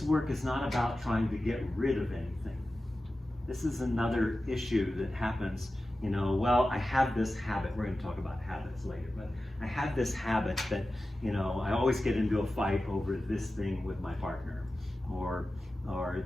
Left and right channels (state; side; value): normal; both; correlation 0.94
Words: work is not about trying to get rid of anything. This is another issue that happens, well, I have this habit. We're going to talk about habits later, but I have this habit that, I always get into a fight over this thing with my partner, or